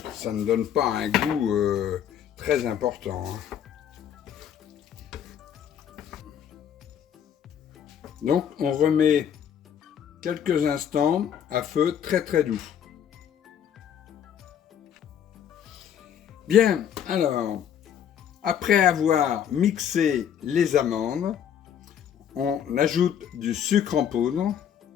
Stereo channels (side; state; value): right; quieter; 9.0 dB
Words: ça ne donne pas un goût très important. Hein. Donc, on remet quelques instants à feu très très doux. Bien, alors, après avoir mixé les amandes, on ajoute du sucre en poudre,